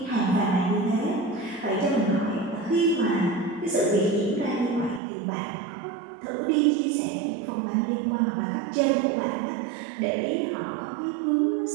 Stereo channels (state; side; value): drops out; left; at 5.0 s